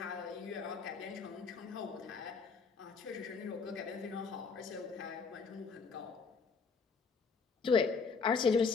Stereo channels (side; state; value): right; quieter; 5.1 dB